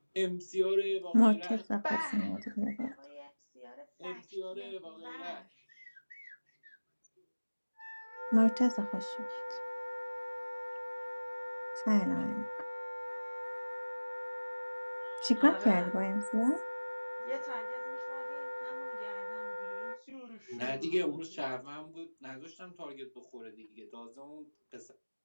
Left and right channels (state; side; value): inverted; both; correlation -1.00